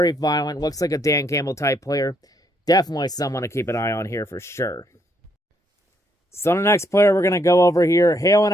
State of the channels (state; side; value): normal; both; correlation 0.73